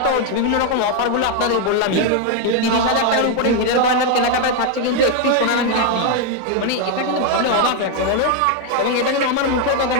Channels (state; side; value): different; both; correlation 0.01